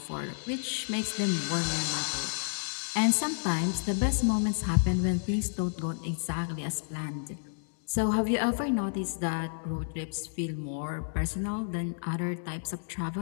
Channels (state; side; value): silent; right; digital silence